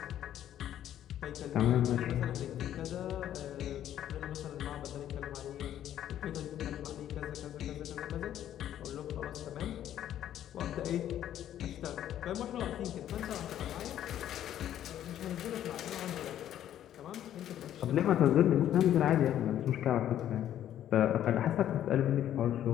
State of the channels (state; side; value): quieter; right; 11.3 dB